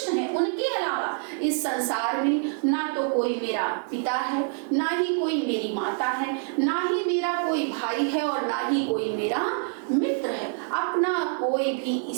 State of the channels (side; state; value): left; silent; 61 dB below the other